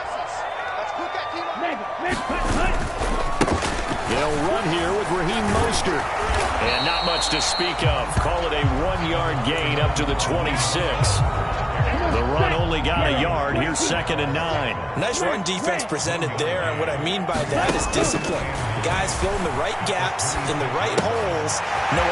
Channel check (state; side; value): identical; both; correlation 1.00